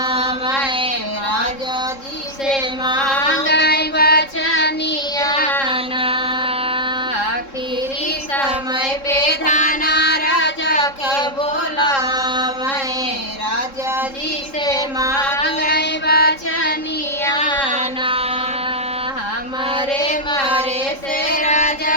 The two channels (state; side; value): late; right; 3.7 ms